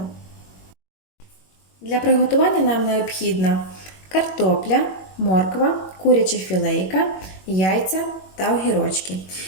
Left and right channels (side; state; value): right; late; 21 ms